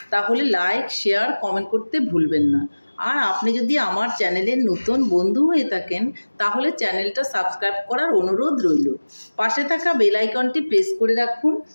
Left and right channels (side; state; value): both; inverted; correlation -1.00